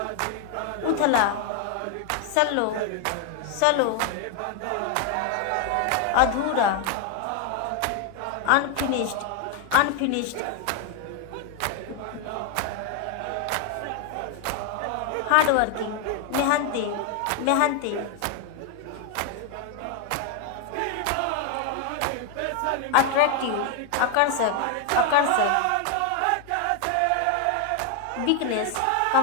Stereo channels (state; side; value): different; both; correlation 0.01